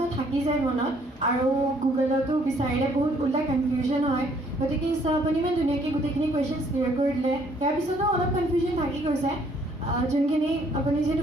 থাকি যায় মনত আৰু গুগলতো বিচাৰিলে বহুত ওলাই কনফিউজন হয় গতিকে আপুনি ইমান ধুনীয়াকৈ গোটেইখিনি কুৱেশ্যনছ ক্লিয়াৰ কৰি দিলে ইয়াৰ পিছতো অলপ কনফিউজন থাকি গৈছে যোনখিনি আপুনি যিহেতু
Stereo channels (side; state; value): both; normal; correlation 0.64